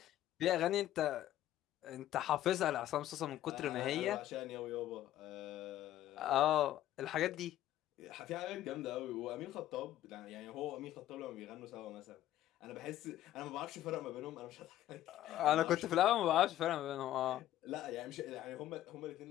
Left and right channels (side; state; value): right; quieter; 13.1 dB